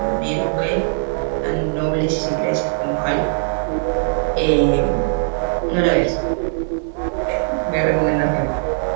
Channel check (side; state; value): left; silent; 66 dB below the other